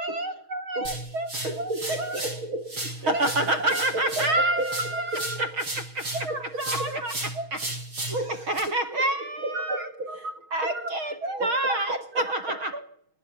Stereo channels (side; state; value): left; late; 6.3 ms